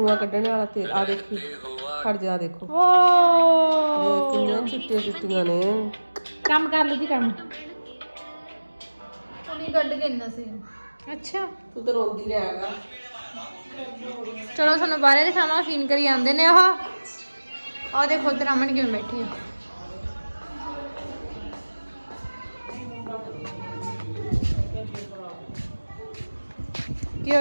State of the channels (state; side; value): inverted; both; correlation -1.00